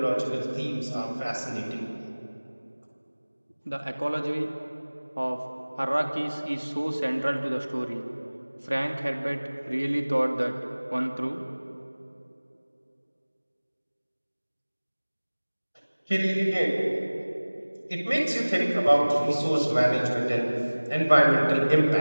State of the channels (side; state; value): both; inverted; correlation -1.00